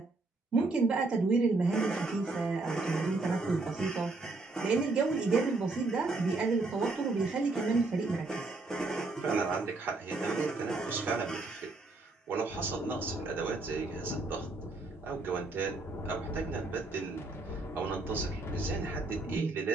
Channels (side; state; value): left; quieter; 3.4 dB